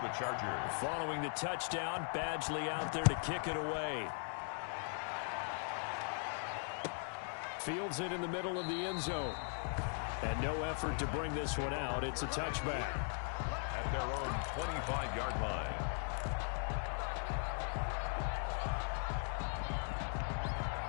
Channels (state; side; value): silent; right; 51 dB below the other